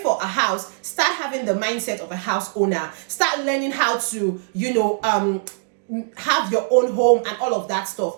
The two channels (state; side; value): silent; left; digital silence